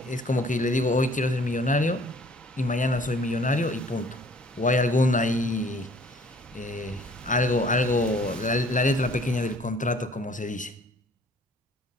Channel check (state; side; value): normal; both; correlation 0.56